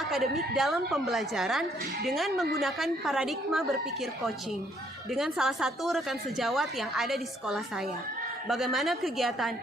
dalam pembelajaran dengan menggunakan paradigma berpikir coaching dengan salah satu rekan sejawat yang ada di sekolah saya. Bagaimana kegiatan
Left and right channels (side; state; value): both; normal; correlation 0.67